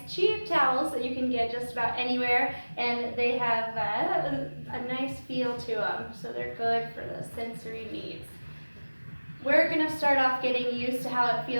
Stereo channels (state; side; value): inverted; both; correlation -1.00